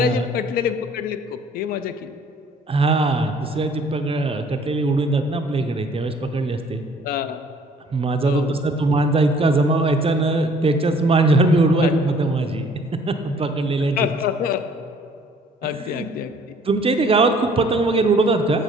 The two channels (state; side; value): normal; both; correlation 0.57